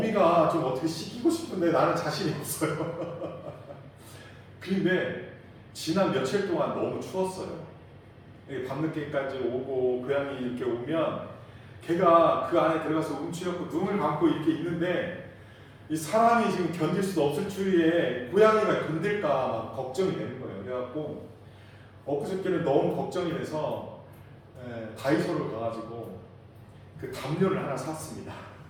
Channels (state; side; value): identical; both; correlation 1.00